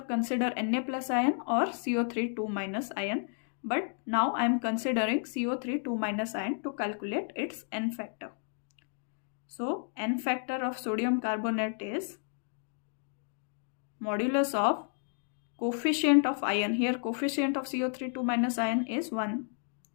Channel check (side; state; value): right; silent; 57 dB below the other